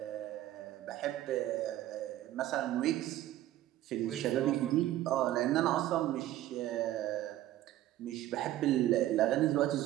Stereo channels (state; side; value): quieter; left; 14.0 dB